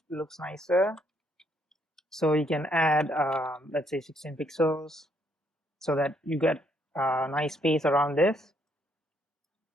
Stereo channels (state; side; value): normal; both; correlation 0.71